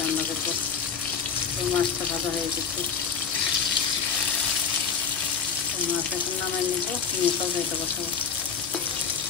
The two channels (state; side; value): quieter; right; 6.3 dB